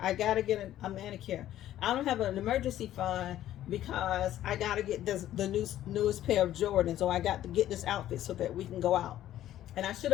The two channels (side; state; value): right; quieter; 12.7 dB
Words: I gotta get a manicure. I don't have an emergency fund because I gotta get the newest pair of Jordans, or I got to get this outfit so that we can go out. And I should